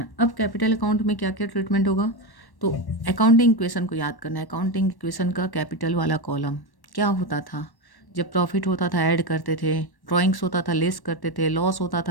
अब कैपिटल अकाउंट में क्या क्या ट्रीटमेंट होगा? तो अकाउंटिंग इक्वेशन को याद करना है। अकाउंटिंग इक्वेशन का कैपिटल वाला कॉलम क्या होता था? जब प्रॉफिट होता था ऐड करते थे, ड्राइंग्स होता था लेस करते थे, लॉस होता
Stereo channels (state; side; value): late; right; 1.1 ms